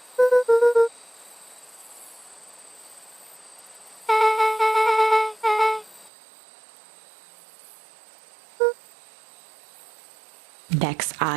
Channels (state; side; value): drops out; left; at 6.1 s